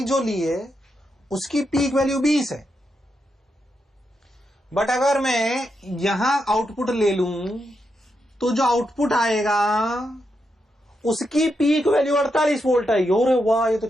जो ली है उसकी पीक वैल्यू 20 है, बट अगर मैं यहां आउटपुट ले लूं तो जो आउटपुट आएगा उसकी पीक वैल्यू 48 वोल्ट है। अरे वाह, ये तो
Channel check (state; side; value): normal; both; correlation 0.84